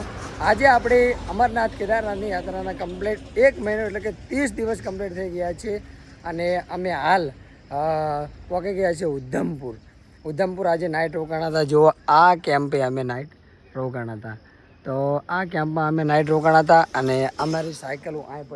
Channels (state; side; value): identical; both; correlation 1.00